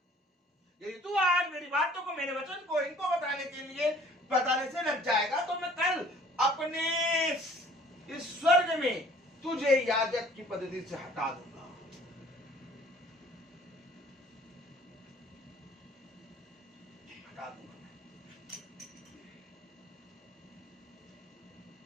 यदि तू आज मेरी बातों को, मेरे वचन को इनको बताने से लग जाएगा, तो मैं कल अपने इस स्वर्ग में तुझे याजक की पद्धति से हटा दूंगा। हटा दूंगा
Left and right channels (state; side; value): normal; both; correlation 0.54